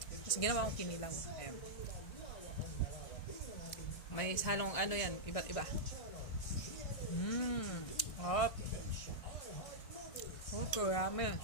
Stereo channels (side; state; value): right; late; 1.6 ms